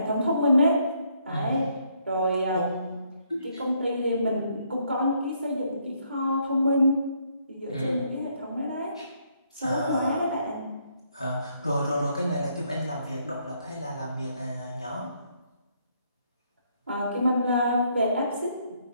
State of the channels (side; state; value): both; inverted; correlation -0.71